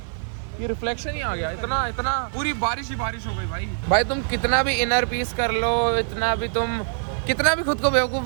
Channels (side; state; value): left; silent; 60 dB below the other